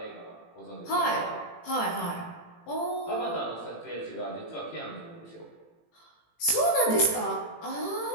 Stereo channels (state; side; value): late; right; 18 ms